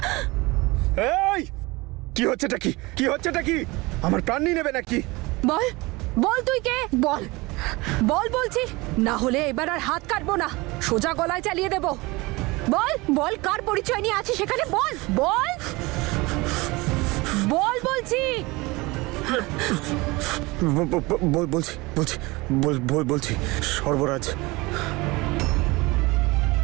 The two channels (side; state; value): left; quieter; 23.1 dB